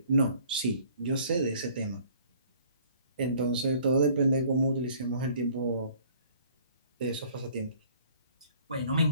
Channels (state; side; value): inverted; both; correlation -0.56